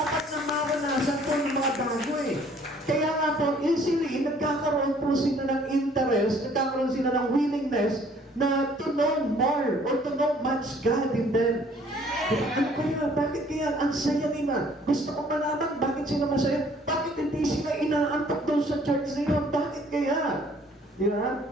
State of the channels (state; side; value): normal; both; correlation 0.58